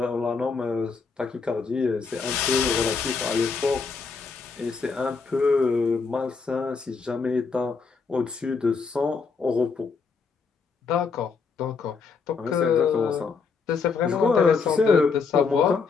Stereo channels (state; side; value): quieter; right; 5.0 dB